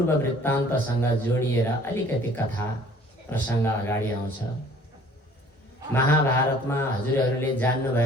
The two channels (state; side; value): normal; both; correlation 0.53